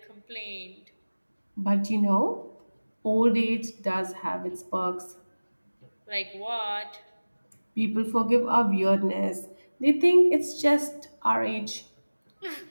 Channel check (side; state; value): both; inverted; correlation -1.00